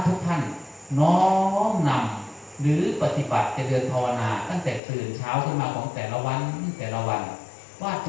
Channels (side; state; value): right; drops out; at 4.8 s